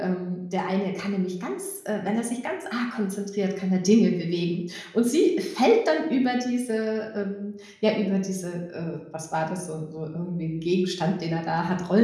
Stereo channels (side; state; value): both; identical; correlation 1.00